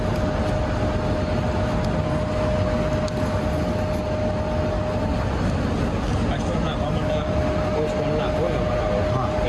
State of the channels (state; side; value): identical; both; correlation 1.00